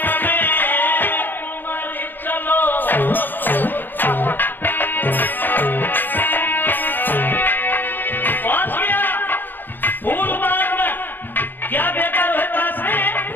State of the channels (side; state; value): right; late; 0.093 ms